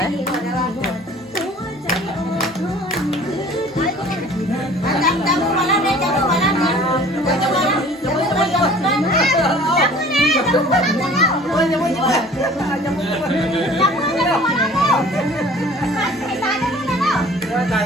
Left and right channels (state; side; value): normal; both; correlation 0.48